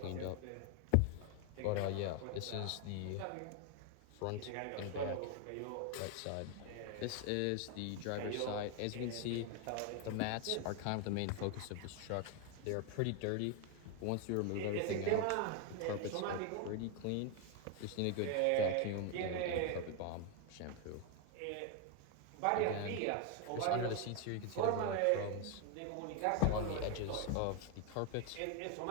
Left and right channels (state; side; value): different; both; correlation 0.01